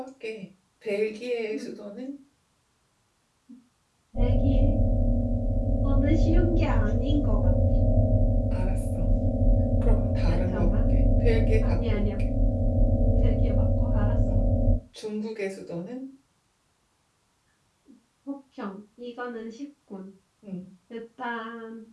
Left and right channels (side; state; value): both; identical; correlation 1.00